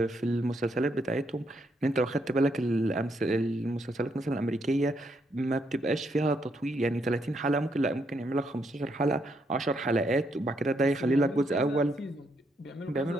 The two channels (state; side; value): normal; both; correlation 0.76